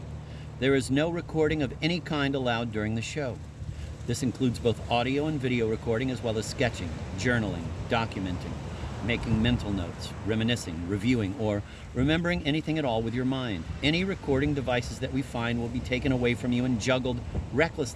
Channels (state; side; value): identical; both; correlation 1.00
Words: there is no recording of any kind allowed during the show. This includes both audio and video recording, as well as sketching, journaling, documenting, making mental notes, reminiscing, reviewing, or remembering anything at all with your mind. Any recording devices that we find will be taken away from you and juggled